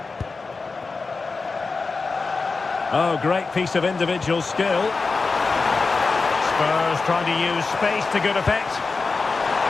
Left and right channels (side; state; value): right; quieter; 4.2 dB